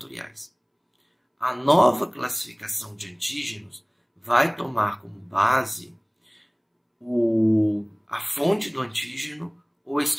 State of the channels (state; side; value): identical; both; correlation 1.00